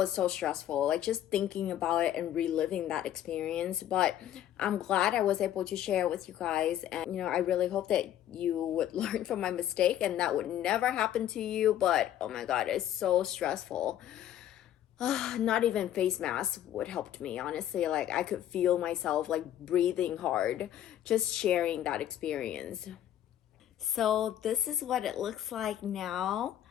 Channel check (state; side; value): quieter; right; 11.6 dB